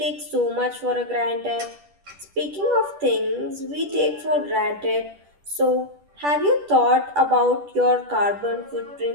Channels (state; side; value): late; left; 10 ms